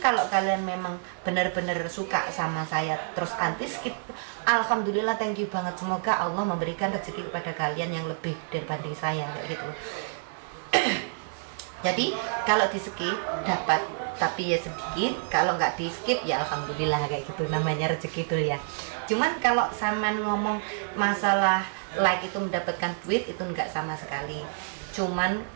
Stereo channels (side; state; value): left; silent; digital silence